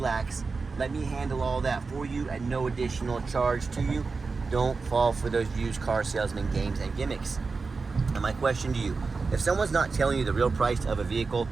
let me handle all that for you at no additional charge to you. Don't fall for those used car salesman games and gimmicks. And my question to you, if someone's not telling you the real price of a vehicle,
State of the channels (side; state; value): left; quieter; 4.4 dB